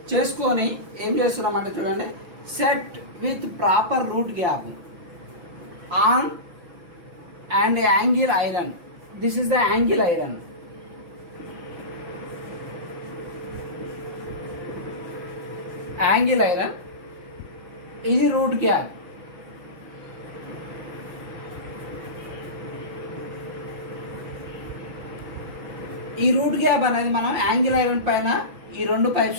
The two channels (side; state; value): left; late; 5.7 ms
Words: చేసుకొని ఏం చేస్తున్నాం అంటే చూడండి, set with proper root gap on and angle iron. This is the angle iron. ఇది రూట్ గ్యాప్. ఈ రూట్ గ్యాప్ అనేది మనం యాంగిల్ ఐరన్ పైన ఈ 2